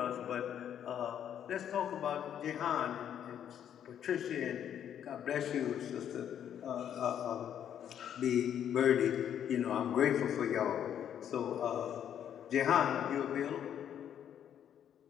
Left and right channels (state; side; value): quieter; right; 9.6 dB